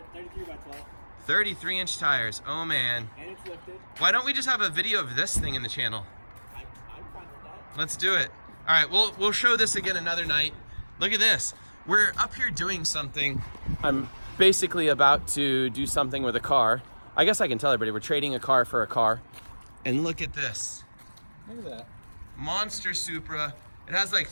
33 by 12. 33-inch tires, oh man. And it's lifted. Why don't we just have a video of this thing in the channel? I'm fine with that. Let's do it. All right, we'll show this again another night. Look at this. We're up here doing something. I'm basically about to do something with a car. I guess I can tell everybody we're trading a car for a car. And look at this. Look at that. Monster Supra. It has like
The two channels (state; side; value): inverted; both; correlation -1.00